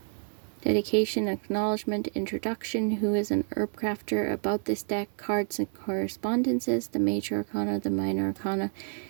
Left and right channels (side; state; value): left; silent; 59 dB below the other